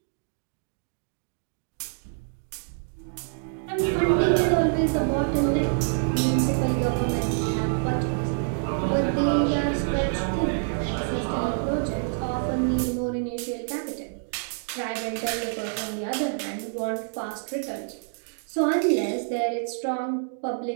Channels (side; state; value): left; silent; digital silence